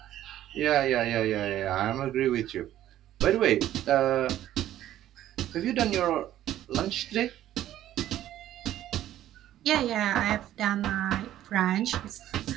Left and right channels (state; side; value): quieter; left; 12.7 dB